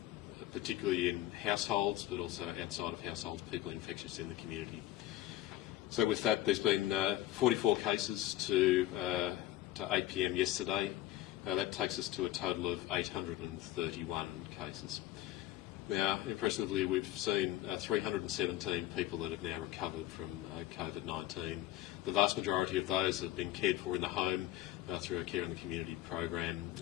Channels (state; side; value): quieter; right; 14.5 dB